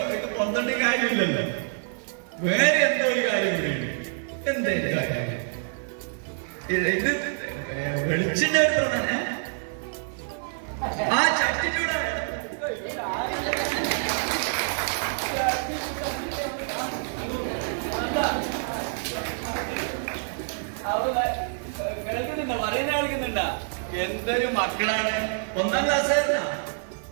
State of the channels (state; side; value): silent; left; 60 dB below the other